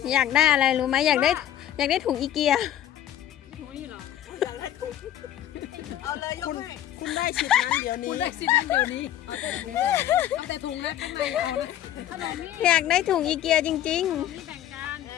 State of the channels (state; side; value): quieter; right; 11.8 dB